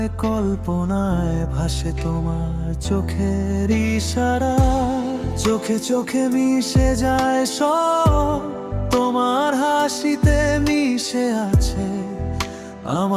কল্পনায় ভাসে তোমার চোখের ইশারা। চোখে চোখে মিশে যায় সব, তোমার হাসিতে মিশে আছে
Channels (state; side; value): identical; both; correlation 1.00